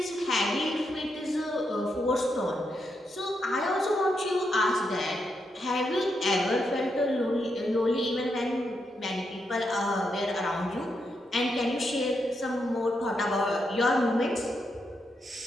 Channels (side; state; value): both; normal; correlation 0.82